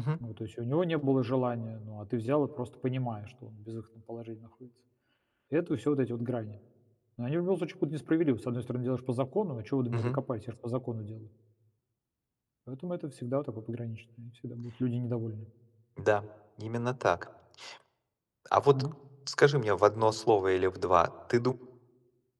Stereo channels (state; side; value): identical; both; correlation 1.00